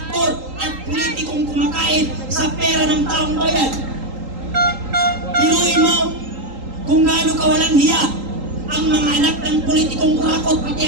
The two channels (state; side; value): late; left; 3.8 ms